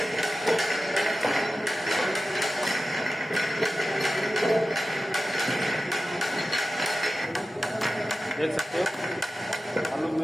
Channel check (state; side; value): normal; both; correlation 0.94